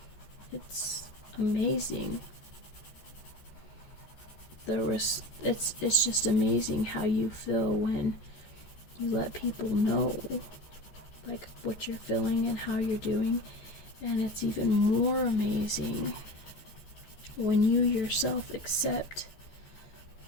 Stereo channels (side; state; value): right; late; 14 ms